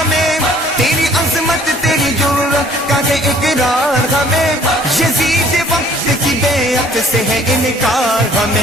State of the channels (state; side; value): normal; both; correlation 0.56